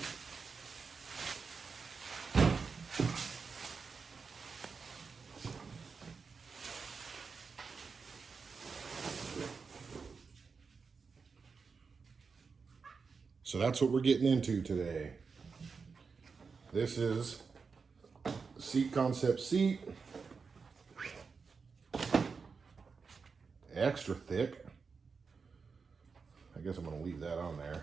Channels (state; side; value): quieter; left; 5.1 dB